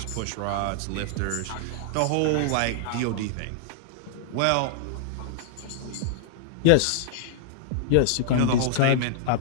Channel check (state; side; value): different; both; correlation -0.01